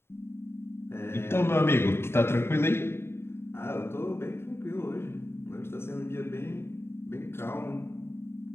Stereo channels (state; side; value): late; right; 0.12 ms